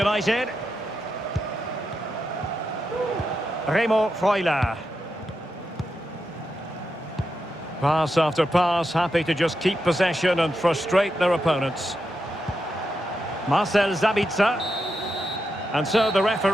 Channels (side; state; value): both; normal; correlation 0.86